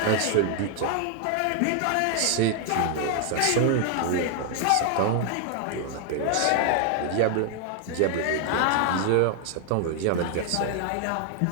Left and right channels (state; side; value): different; both; correlation 0.00